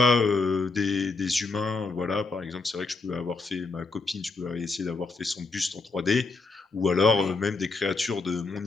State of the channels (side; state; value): right; quieter; 3.8 dB